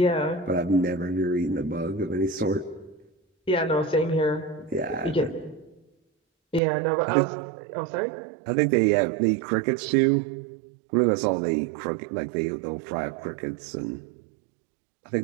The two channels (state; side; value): drops out; left; at 6.6 s